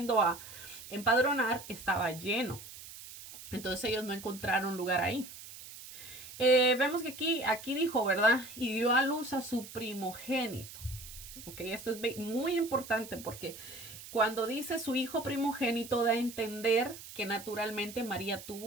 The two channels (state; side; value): noise; right; hiss, 14 dB below the sound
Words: a empadronar, estaba lleno. Entonces ellos no encontraron lugar ahí. Vemos que aquí dijo, ¿verdad? Y dio a luz a su primogénito. Ok, esto es muy importante porque cuando dice su hijo primogénito da a entender que naturalmente María